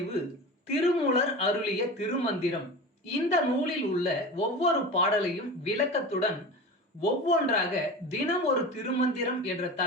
திருமூலர் அருளிய திருமந்திரம். இந்த நூலில் உள்ள ஒவ்வொரு பாடலையும் விளக்கத்துடன் ஒவ்வொன்றாக தினம் ஒரு திருமந்திரம் என்ற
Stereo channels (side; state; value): both; normal; correlation 0.30